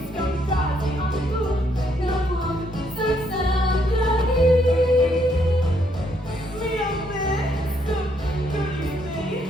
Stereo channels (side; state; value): both; normal; correlation 0.72